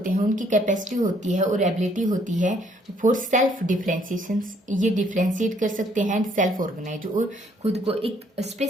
हैं उनकी कैपेसिटी होती है और एबिलिटी होती है फॉर सेल्फ डिफ्रेंशिएशन, ये डिफ्रेंशिएट कर सकते हैं एंड सेल्फ ऑर्गेनाइज, और खुद को एक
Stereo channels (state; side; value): normal; both; correlation 0.65